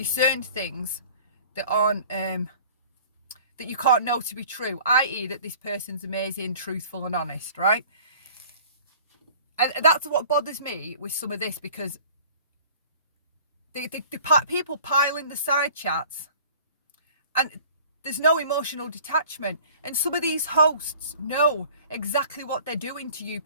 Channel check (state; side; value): inverted; both; correlation -0.48